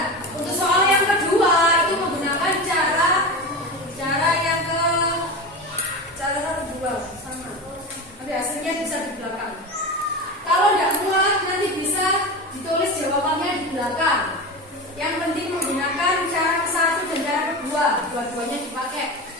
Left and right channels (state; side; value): normal; both; correlation 0.25